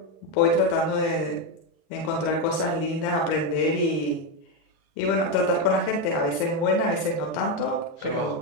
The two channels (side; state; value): right; late; 37 ms